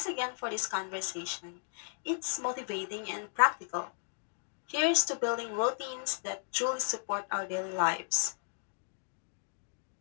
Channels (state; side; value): silent; right; digital silence